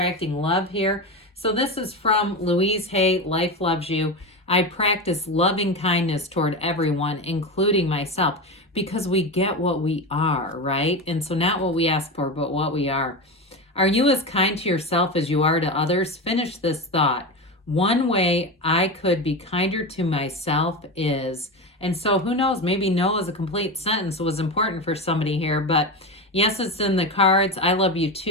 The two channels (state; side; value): normal; both; correlation 0.20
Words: love here. So this is from Louise Hay, Life Loves You. I practice loving kindness toward everyone, including myself, because we get what we are, right? And so not what we ask for, but what we are. Are you as kind to yourself as you are to others? Finish this thought. One way I could be kinder to myself is, and so who knows, maybe no is a complete sentence was important for somebody here, but yes, it's in the cards. I love you